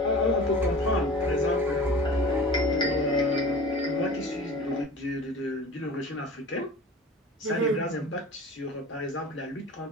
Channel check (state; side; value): normal; both; correlation 0.39